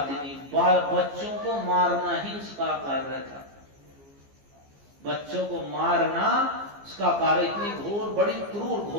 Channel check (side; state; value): left; late; 15 ms